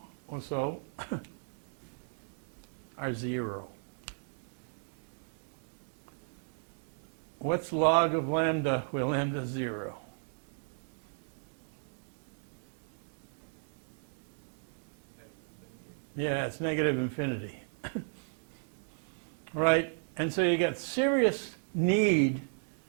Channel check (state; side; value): silent; left; digital silence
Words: or so, are 0. What's log of lambda where lambda is 0? Yeah, it's negative infinity. Right? And so you get serious need